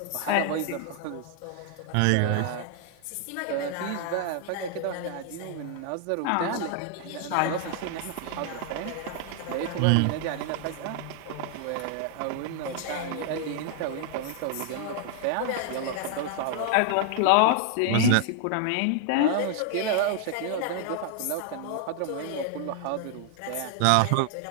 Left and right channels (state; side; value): different; both; correlation 0.00